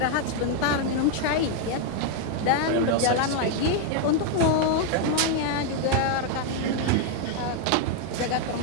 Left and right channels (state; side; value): different; both; correlation 0.00